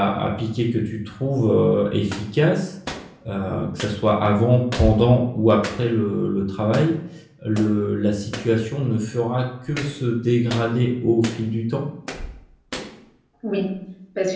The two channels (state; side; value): identical; both; correlation 1.00